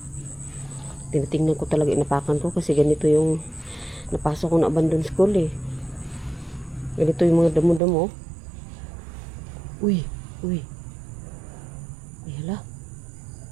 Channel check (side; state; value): left; drops out; at 7.8 s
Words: Tinitingnan ko talaga, inapakan ko kasi ganito yung napasok ko na abandon school, eh. Ganito yung mga damo-damo. Uy, uy. Ay, hala.